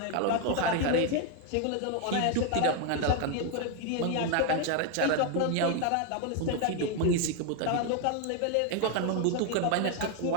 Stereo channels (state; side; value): different; both; correlation 0.01